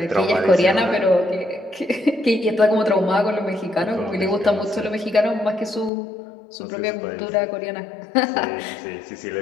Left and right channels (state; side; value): drops out; right; at 5.9 s